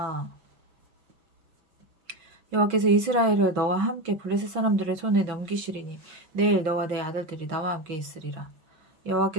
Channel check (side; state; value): left; late; 5.9 ms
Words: 여호와께서 이스라엘을 너와 함께 블레셋 사람들의 손에 넘기시리니 내일 너와 내 아들들이 나와 함께 있으리라.